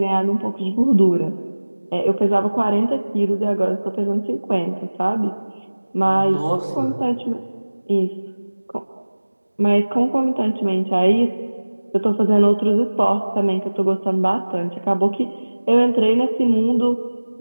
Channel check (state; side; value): inverted; both; correlation -1.00